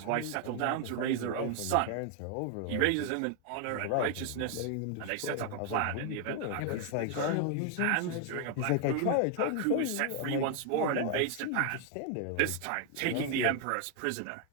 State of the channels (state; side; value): different; both; correlation 0.00